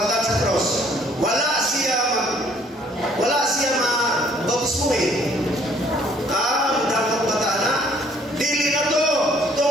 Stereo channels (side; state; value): both; normal; correlation 0.61